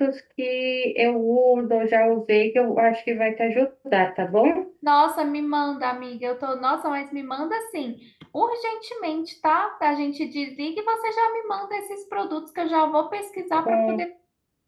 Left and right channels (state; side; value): identical; both; correlation 1.00